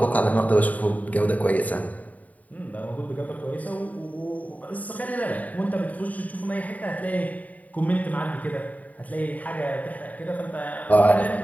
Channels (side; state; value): right; late; 0.072 ms